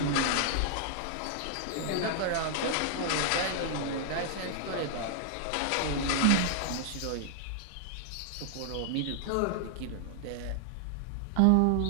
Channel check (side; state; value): both; different; correlation 0.00